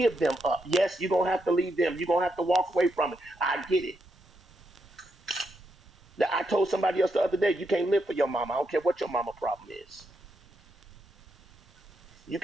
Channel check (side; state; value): both; normal; correlation 0.82